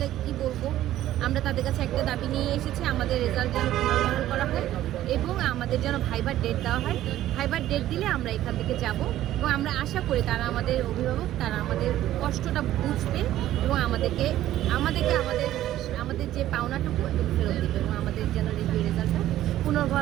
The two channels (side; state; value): left; quieter; 13.5 dB